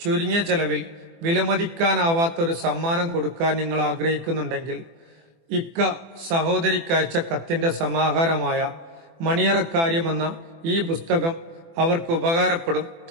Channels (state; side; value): late; left; 24 ms